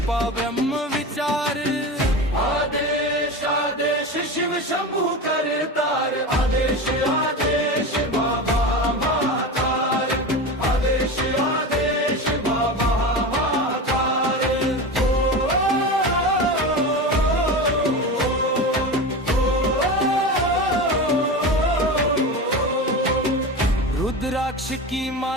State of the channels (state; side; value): normal; both; correlation 0.25